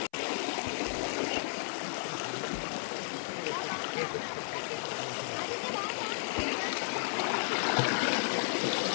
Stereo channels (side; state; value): right; silent; 55 dB below the other